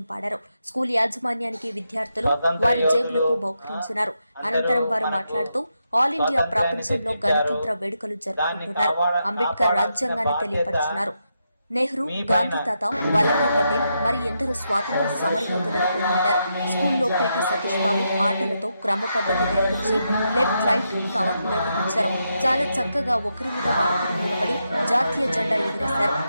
పాడారు. స్కూల్ యాజమాన్యానికి విద్యార్థులు వారి జేబులకు బహుకరించినారు. అనంతరం వారు మాట్లాడుతూ ఆల్ ఇండియా ప్రపంచంలో గణతంత్ర వేడుకలు జరుపుకుంటున్నారు. అంబేద్కర్ రాజ్యాంగాన్ని తెలియపరిచినారు. నెహ్రూ, గాంధీ తాత, వల్లభాయ్ పటేల్ మరి ఎందరో స్వాతంత్ర సమరయోధులను కొనియాడారు. స్కూల్లో పీటీ సతీష్ బాబు ఆటలతో క్రమ పద్ధతి నేర్పించి లెఫ్ట్ రైట్ కవర్ నిర్వహించారు. చాలా చక్కగా ఒకరి మీద వారికి నిలబడి జాతీయ జెండా ఎగిరేశారు.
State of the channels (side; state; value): both; inverted; correlation -0.83